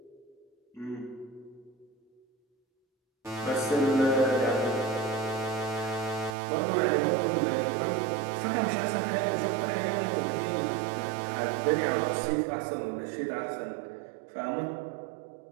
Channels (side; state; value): left; drops out; at 6.4 s